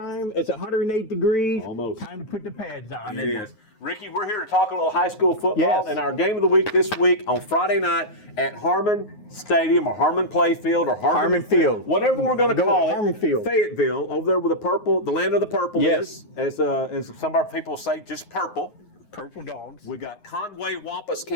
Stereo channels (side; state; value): right; late; 9.4 ms